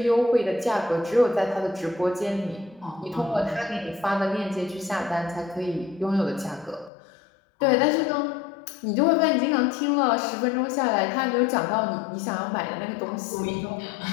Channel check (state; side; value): drops out; right; at 6.9 s